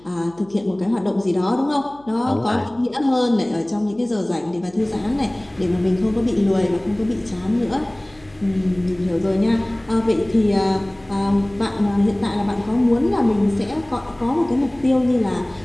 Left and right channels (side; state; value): left; noise; hum, 28 dB below the sound